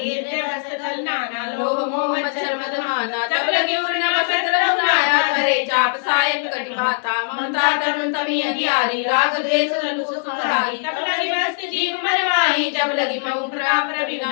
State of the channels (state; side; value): silent; right; digital silence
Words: हृदय नाना लोभ मोह मच्छर मदमाना तब लगी उर्न वसत रघुनाया करे चाप सायक कटि भाता ममता तरुण तमी अधियारी राग द्वेष रघु सुखधारी तब लगी वस्त जीव मरवाई जब लगी महु प्रताप